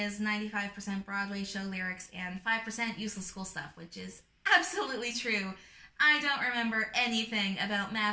95% Broadway show lyrics and 5% useless school stuff," which is absolutely true. I don't remember anything about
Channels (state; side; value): identical; both; correlation 1.00